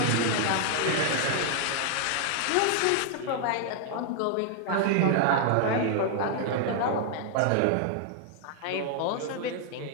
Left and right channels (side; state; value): both; different; correlation 0.00